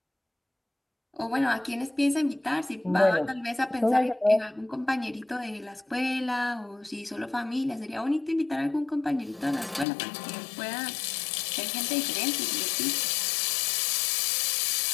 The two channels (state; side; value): drops out; right; at 9.9 s